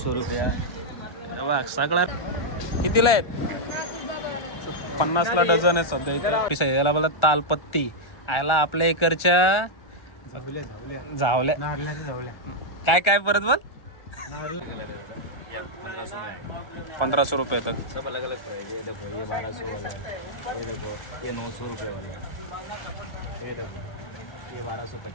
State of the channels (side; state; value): right; late; 1.4 ms